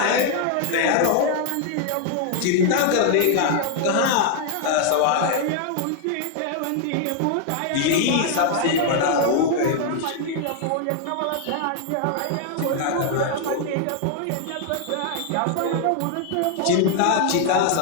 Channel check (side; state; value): both; different; correlation 0.00